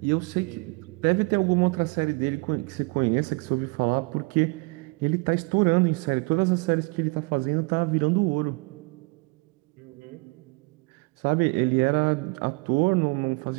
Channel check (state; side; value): quieter; left; 29.1 dB